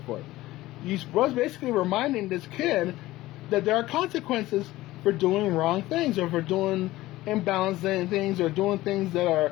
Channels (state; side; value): quieter; right; 17.2 dB